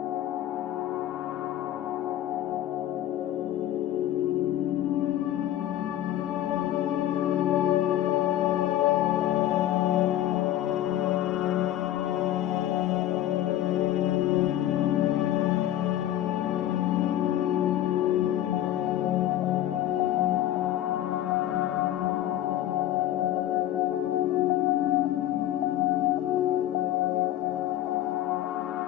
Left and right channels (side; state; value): right; quieter; 12.7 dB